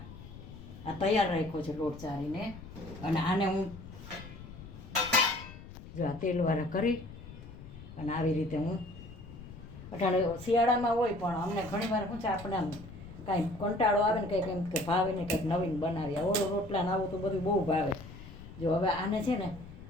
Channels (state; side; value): noise; left; rumble, 15 dB below the sound